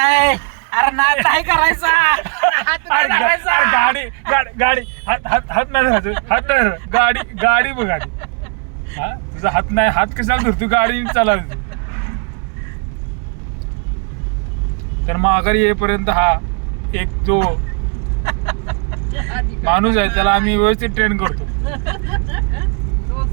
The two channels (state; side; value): quieter; left; 36.1 dB